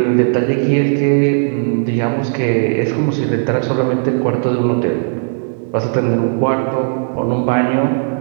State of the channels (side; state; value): left; silent; digital silence